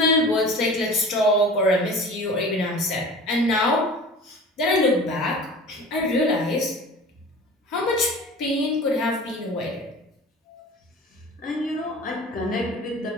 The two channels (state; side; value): normal; both; correlation 0.39